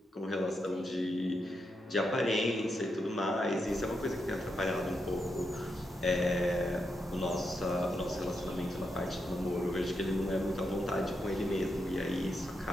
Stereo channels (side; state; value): both; normal; correlation 0.84